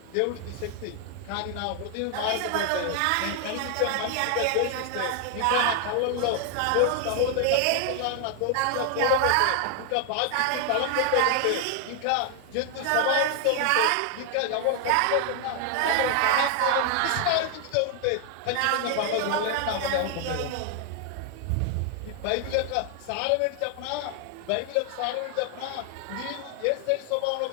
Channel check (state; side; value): different; both; correlation 0.00